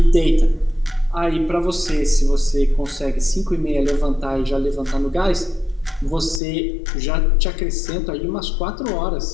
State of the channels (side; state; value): right; drops out; at 6.4 s